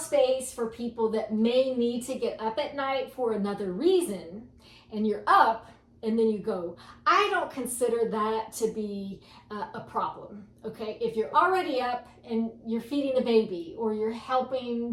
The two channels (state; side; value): identical; both; correlation 1.00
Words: for people that may need to get up at night for another reason, and you're up and then you go. I don't consider that to be a problem, okay? If you're already up and you're feeding the baby, or you're